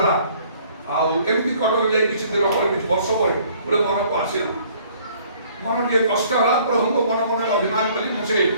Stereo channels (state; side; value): inverted; both; correlation -0.58